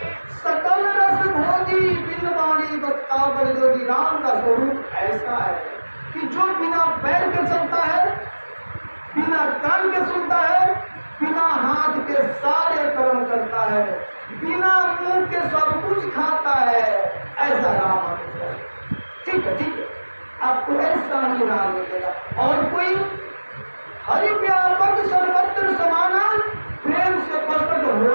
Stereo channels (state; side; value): inverted; both; correlation -1.00